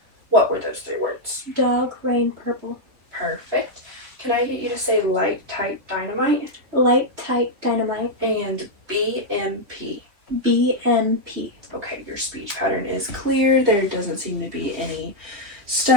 What were those 3 words? Dog, rain, purple. Perfect. Can I get you to say light, tight, dynamite? Light, tight, dynamite. And BMP. BMP. Okay, your speech pattern is clear. There doesn't seem to be any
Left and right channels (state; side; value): late; left; 3.5 ms